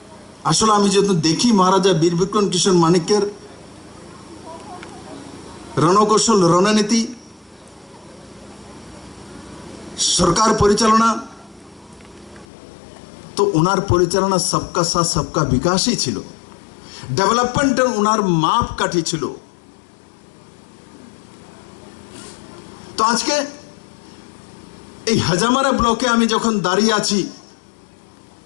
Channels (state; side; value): drops out; right; at 12.5 s